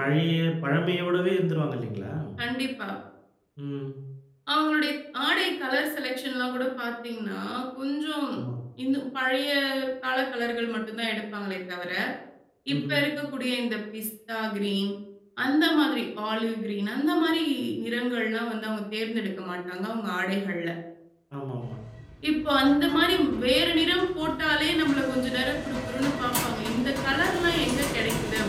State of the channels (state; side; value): identical; both; correlation 1.00